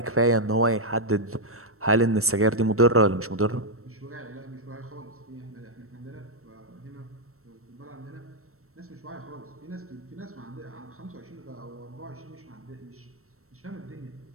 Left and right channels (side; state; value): left; late; 0.63 ms